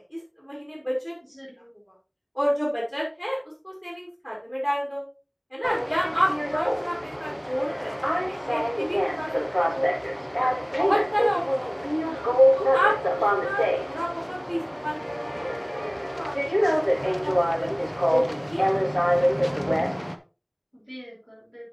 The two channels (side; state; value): both; identical; correlation 1.00